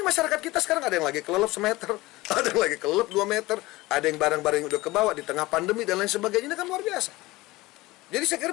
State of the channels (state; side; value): quieter; right; 19.9 dB